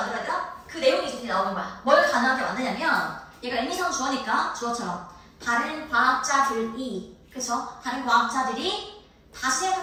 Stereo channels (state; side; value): identical; both; correlation 1.00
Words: 되나? 그 내용이 이제 나오는 거야. 뭘 가능하게 만드냐면 얘가 의미상 주어니까 주어처럼 다른 과학자들이, 그쵸? 다른 과학자들이 다시